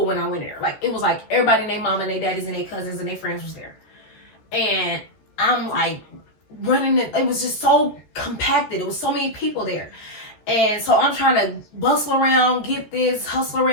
when I went there. Like, it was like everybody and their mama and their daddies and their cousins and their friends was there. And I'm like running it was just so compacted. It was so many people there. And so I'm trying to bustle around, get this, hustle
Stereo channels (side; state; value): right; late; 14 ms